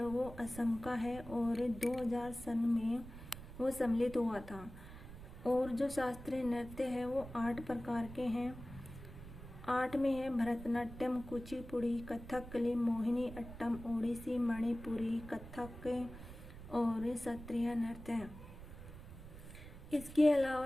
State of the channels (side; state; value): right; noise; rumble, 13 dB below the sound